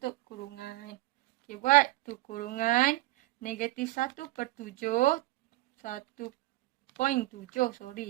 kurungan. Okey, buat tu kurungan negatif 1/7, 1.7,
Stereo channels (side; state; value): left; quieter; 18.7 dB